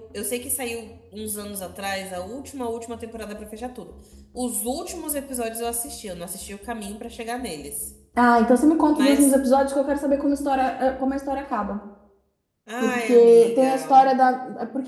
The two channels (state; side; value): identical; both; correlation 1.00